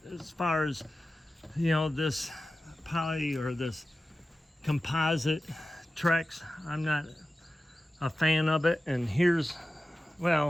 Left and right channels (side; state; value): both; normal; correlation 0.94